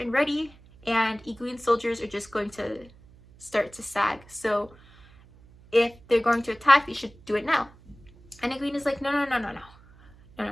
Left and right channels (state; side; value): noise; right; hum, 25 dB below the sound